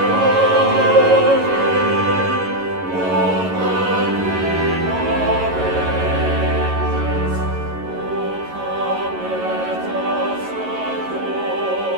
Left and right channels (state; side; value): late; left; 11 ms